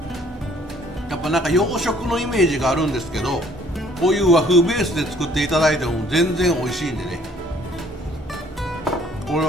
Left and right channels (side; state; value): both; normal; correlation 0.59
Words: やっぱなんか洋食のイメージがあるんですけど、こういう和風ベースで作っていただいても全然美味しいんでね、これ